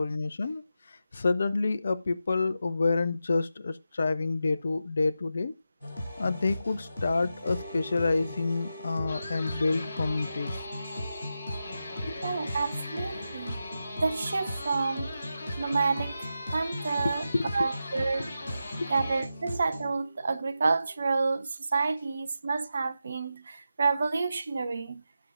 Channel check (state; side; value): inverted; both; correlation -0.89